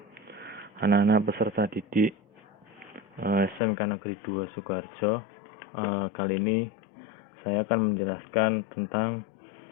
Anak-anak peserta didik SMK Negeri 2 Sukoharjo. Kali ini saya akan menjelaskan tentang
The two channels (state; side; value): drops out; right; at 3.6 s